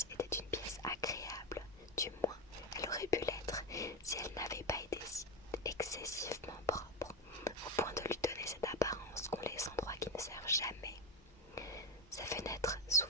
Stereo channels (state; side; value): normal; both; correlation 0.13